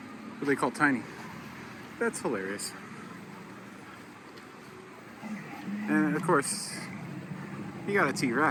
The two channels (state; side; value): identical; both; correlation 1.00